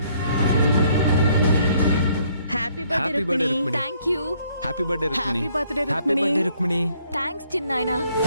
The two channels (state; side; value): inverted; both; correlation -0.66